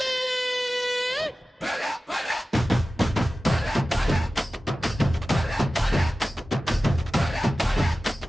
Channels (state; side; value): normal; both; correlation 0.95